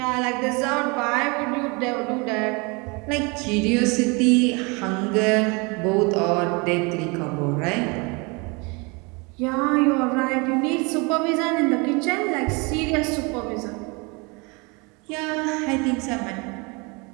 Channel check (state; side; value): quieter; left; 29.0 dB